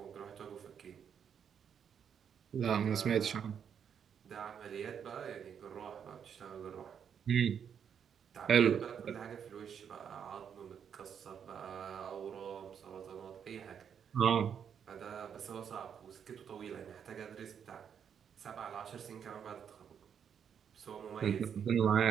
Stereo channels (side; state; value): left; quieter; 7.9 dB